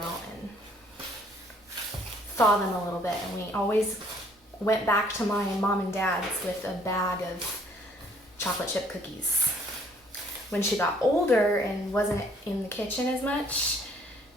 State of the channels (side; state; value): both; normal; correlation 0.61